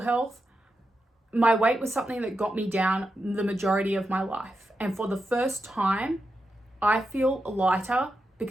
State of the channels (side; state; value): both; normal; correlation 0.88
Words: My weight was something that got me down the majority of my life. And for the first time, I feel lighter